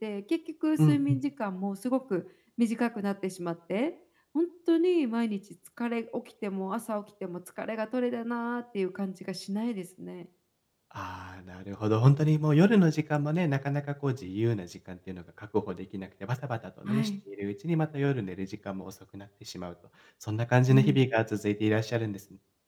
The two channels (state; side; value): identical; both; correlation 1.00